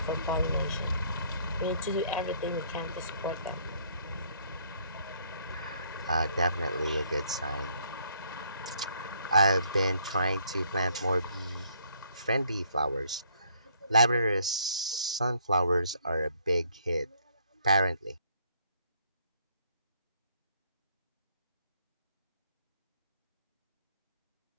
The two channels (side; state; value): both; inverted; correlation -0.66